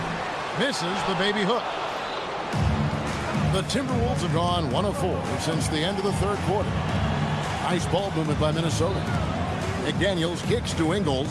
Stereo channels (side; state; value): both; identical; correlation 1.00